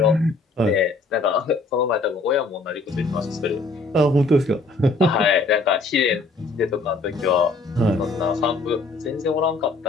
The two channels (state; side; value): quieter; right; 3.5 dB